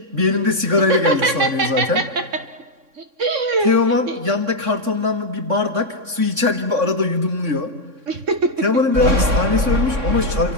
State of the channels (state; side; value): late; left; 3.6 ms